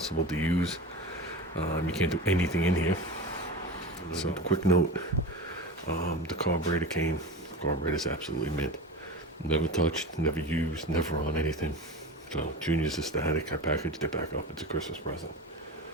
to use. You can't do anything in here. So, quick note, the carburetor came. The carburetor's absolutely mint. Never touched, never used, never on anything. So Junior's aesthetic. I packaged it back up. It's a Christmas present.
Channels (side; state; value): both; normal; correlation 0.29